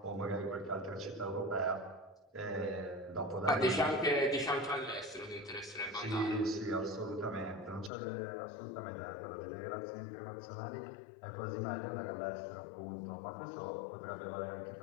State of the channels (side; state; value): right; drops out; at 7.9 s